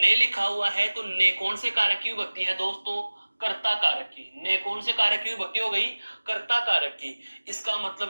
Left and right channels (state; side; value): inverted; both; correlation -1.00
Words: लिखा हुआ है तो ने कौन से कारक की विभक्ति है दोस्तों? कर्ता कारक की। ने कौन से कारक की विभक्ति हो गई? कर्ता कारक की। इसका